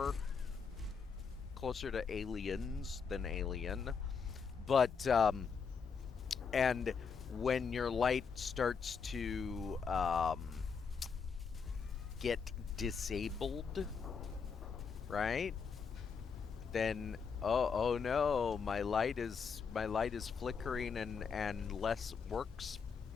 Closer to aliens than alien. But and when your light starts to get disabled, right? Then oh no, my light is flickering and works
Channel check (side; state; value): right; quieter; 5.8 dB